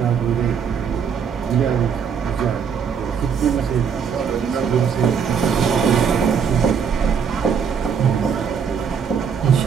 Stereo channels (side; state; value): left; quieter; 6.9 dB